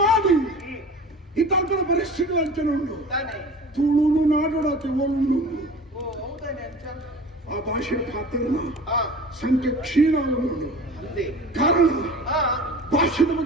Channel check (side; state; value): both; normal; correlation 0.40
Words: ಈ ತಲ್ಪದ ಪರಿಸ್ಥಿತಿ ಅಂಚನೆ ಉಂಡು. ತುಳುನು ನಾಡೋಡತ್ತೆ ಓಲುಂಡು ಆ ಭಾಷೆಯ ಪಾತ್ರನ ಸಂಖ್ಯೆ ಕ್ಷೀಣಾಗುಂಡು. ಕಾರಣ ಭಾಷೆದ